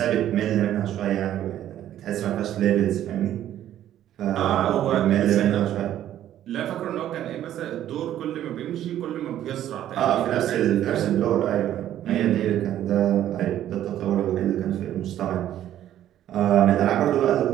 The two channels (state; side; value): quieter; left; 11.8 dB